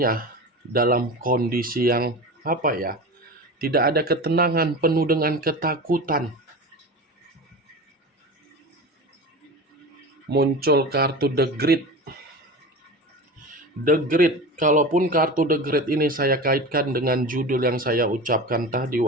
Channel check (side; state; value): both; normal; correlation 0.30